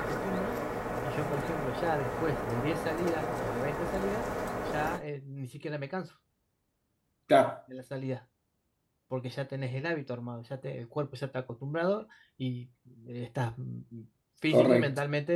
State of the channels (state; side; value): identical; both; correlation 1.00